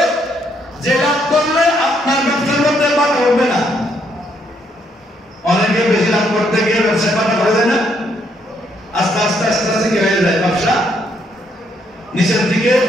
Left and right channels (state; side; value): normal; both; correlation 0.72